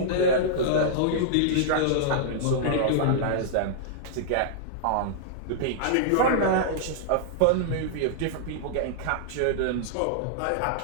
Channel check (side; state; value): both; different; correlation -0.02